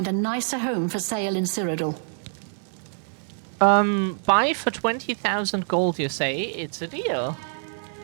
a nicer home for sale in Cyrodiil. Buy for 20,000 gold, you say? It's a deal.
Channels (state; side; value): silent; left; digital silence